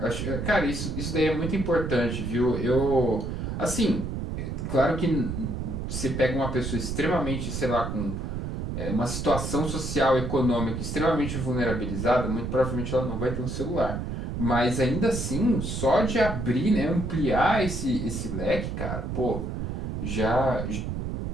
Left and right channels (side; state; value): right; noise; rumble, 4 dB below the sound